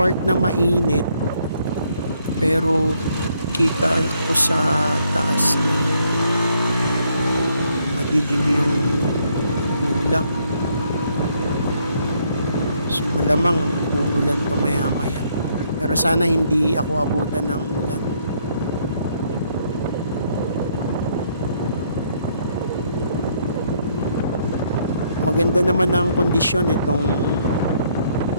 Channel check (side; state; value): both; inverted; correlation -0.70